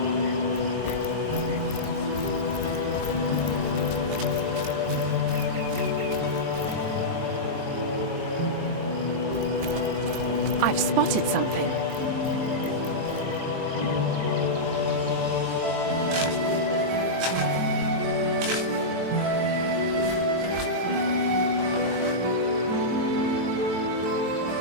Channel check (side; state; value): left; late; 23 ms